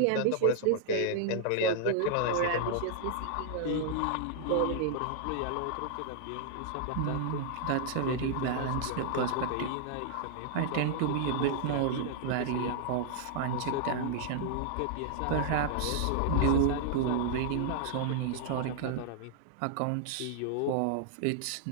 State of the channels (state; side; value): different; both; correlation -0.01